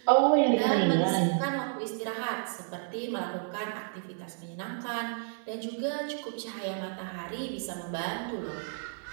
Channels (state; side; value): silent; left; 57 dB below the other